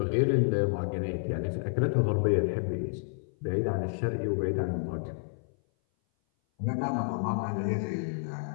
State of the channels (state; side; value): silent; right; 57 dB below the other